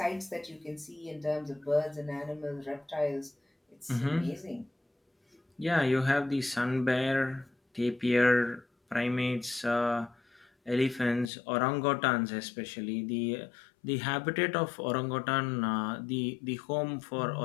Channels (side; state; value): right; drops out; at 11.3 s